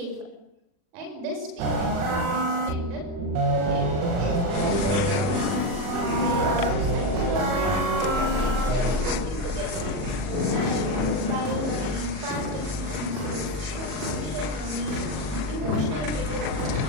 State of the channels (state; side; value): late; left; 40 ms